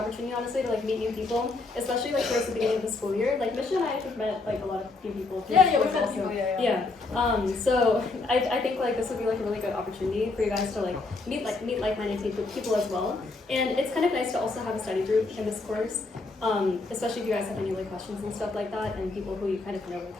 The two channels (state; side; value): quieter; right; 3.5 dB